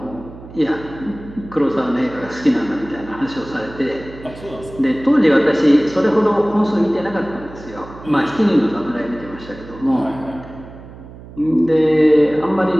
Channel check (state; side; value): noise; right; hum, 17 dB below the sound